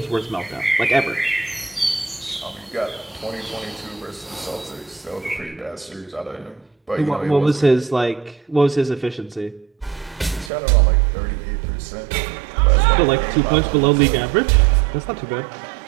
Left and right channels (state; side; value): drops out; left; at 10.5 s